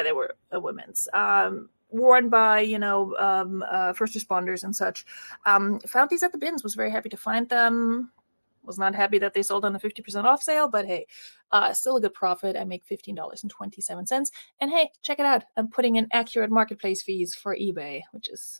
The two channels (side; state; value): both; inverted; correlation -1.00